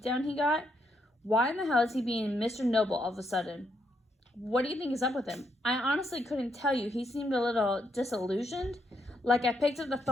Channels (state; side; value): normal; both; correlation 0.77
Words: he got? Why in the hell is he being Mr. Noble all of a sudden? What do you think is up with him? I honestly couldn't tell you. He seemed a little disillusioned. Like I picked up the